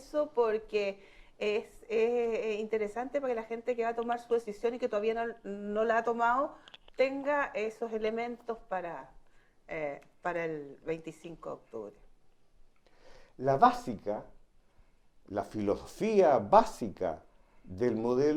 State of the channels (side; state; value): both; identical; correlation 1.00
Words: porque es interesante para que la gente que va a tomar su decisión y que todavía no la ha tomado tenga esos elementos para el 25 de octubre. La filosofía básica del